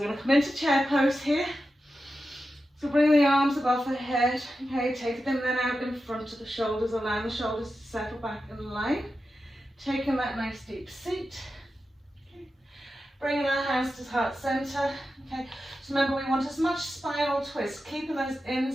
going to come into chair pose here. So bring the arms above the head. Okay, take them then out in front of the shoulders, allowing the shoulders to settle back in line. Taking that nice deep seat. Okay. Bringing our hands to heart center. Okay. So remember, we want as much spinal twist, keeping those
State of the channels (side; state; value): both; normal; correlation 0.91